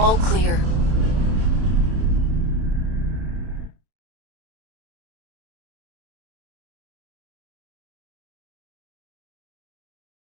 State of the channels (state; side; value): late; left; 32 ms